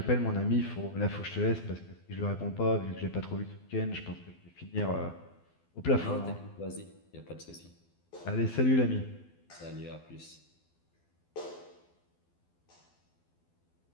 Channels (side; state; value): right; late; 12 ms